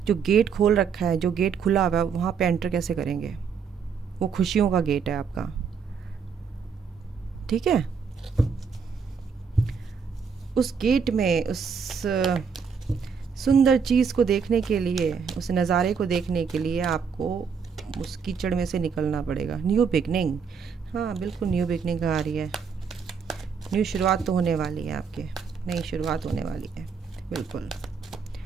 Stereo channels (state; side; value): quieter; left; 6.2 dB